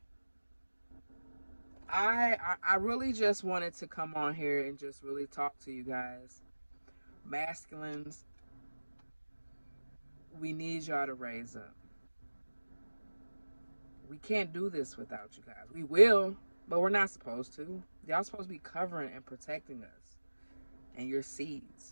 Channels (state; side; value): inverted; both; correlation -1.00